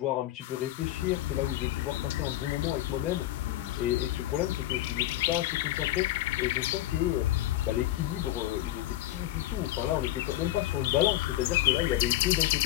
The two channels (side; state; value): right; quieter; 14.8 dB